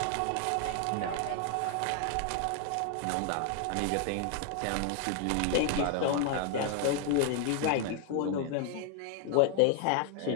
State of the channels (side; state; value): both; different; correlation 0.00